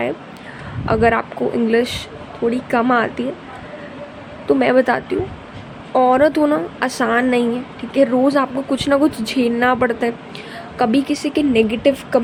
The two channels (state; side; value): identical; both; correlation 1.00